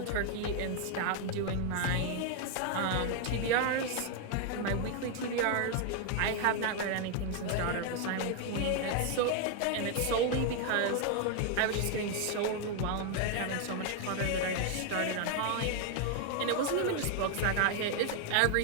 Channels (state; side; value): different; both; correlation 0.01